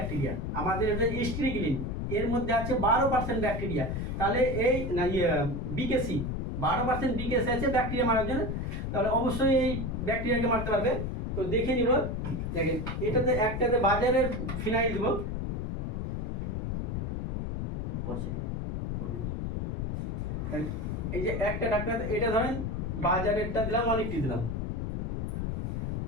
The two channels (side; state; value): left; noise; rumble, 2 dB below the sound